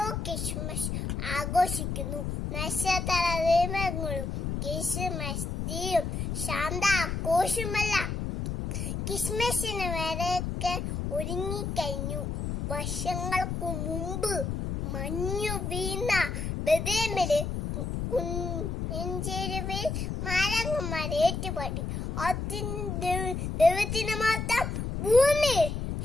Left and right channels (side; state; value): left; noise; rumble, 3 dB below the sound